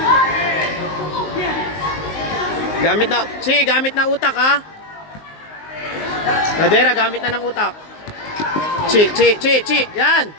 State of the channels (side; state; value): right; late; 19 ms